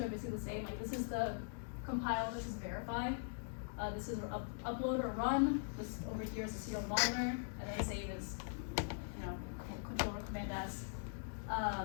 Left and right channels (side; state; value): right; silent; digital silence